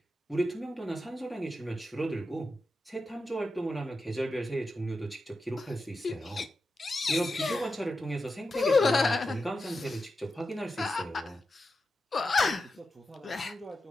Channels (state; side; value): normal; both; correlation 0.90